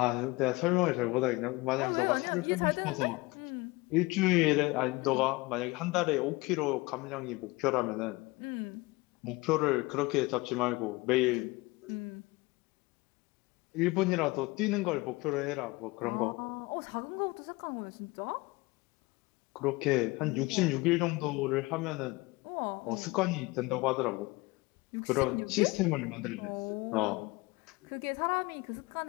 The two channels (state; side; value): quieter; right; 22.9 dB